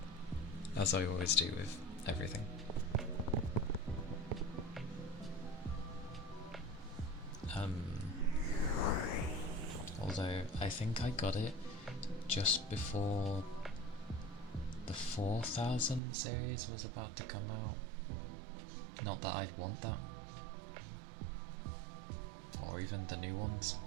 As I always do with everything. Although I think I got it just before the 4000 series was about to come out. Not that I'd want that. Or even the new ones.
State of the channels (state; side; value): drops out; left; at 16.0 s